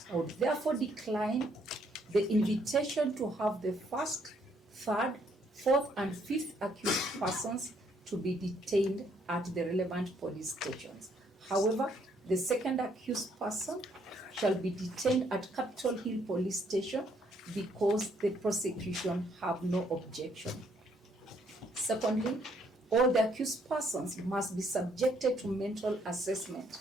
I would therefore decline the invitation to have the first, third, fourth, and fifth accused persons to be detained at the relevant police stations. However, the second accused person shall be detained at Capitol Hill Police Station because the prosecution have no objection. Secondly, all the accused persons must be subjected to mental assessment,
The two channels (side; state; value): both; normal; correlation 0.69